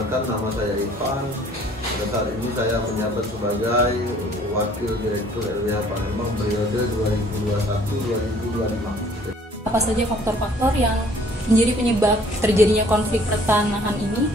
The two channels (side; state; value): both; normal; correlation 0.57